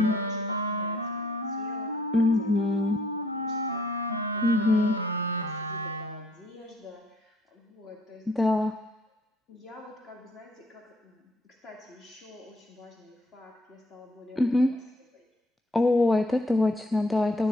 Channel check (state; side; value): normal; both; correlation 0.63